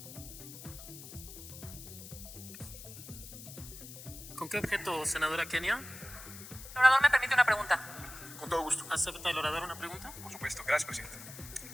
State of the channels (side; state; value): left; noise; hiss, 13 dB below the sound